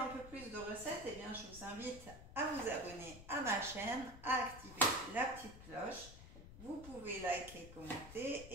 peu plus de recettes, eh bien je vous invite à vous abonner à ma chaîne, à activer la petite cloche. Vous pouvez liker, commenter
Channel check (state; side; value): noise; left; rumble, 14 dB below the sound